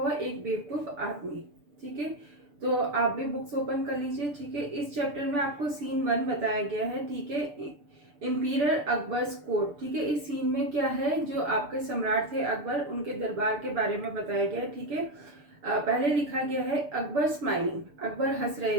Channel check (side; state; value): left; late; 6.9 ms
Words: एक बेवकूफ़ आदमी। ठीक है, तो आप भी बुक्स ओपन कर लीजिए। ठीक है, इस चैप्टर में आपको सीन 1 बताया गया है। ठीक है, इम्पीरियर अकबर्स कोर्ट। ठीक है, इस सीन में क्या है, जो आपके सम्राट थे अकबर, उनके दरबार के बारे में बताया गया है। ठीक है, पहले लिखा गया है अकबर स्माइलिंग, अकबर हंस